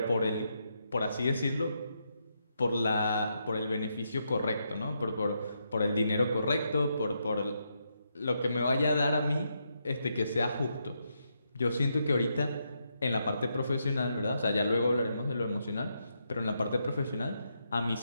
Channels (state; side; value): inverted; both; correlation -0.81